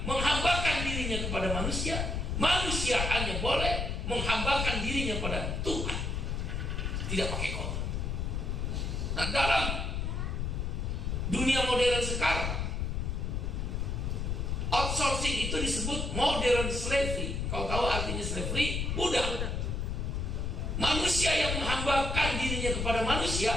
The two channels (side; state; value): left; noise; rumble, 1 dB below the sound